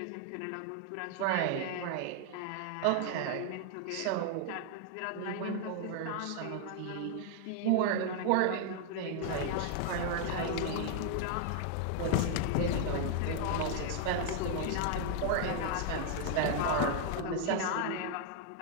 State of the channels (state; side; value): different; both; correlation 0.00